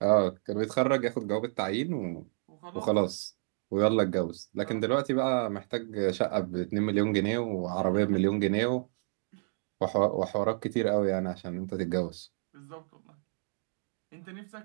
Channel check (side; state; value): left; silent; digital silence